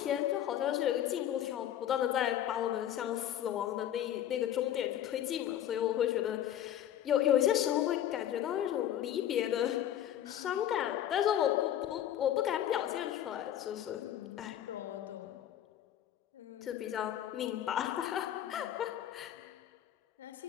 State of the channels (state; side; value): quieter; right; 11.2 dB